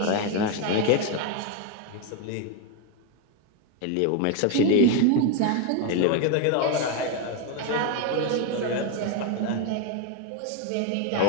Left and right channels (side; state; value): both; different; correlation 0.01